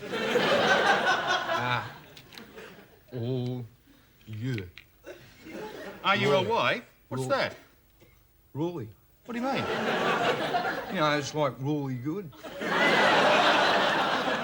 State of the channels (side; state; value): both; identical; correlation 1.00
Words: O U. R-U-L-Y? What's Roy. that? Really? What do you mean? You know, it's like really good.